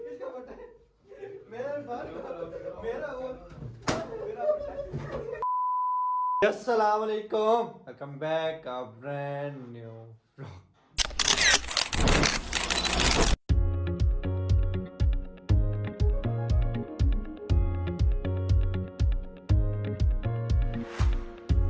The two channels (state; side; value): identical; both; correlation 1.00